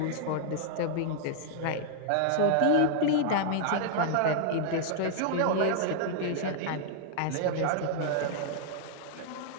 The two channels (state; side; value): different; both; correlation -0.01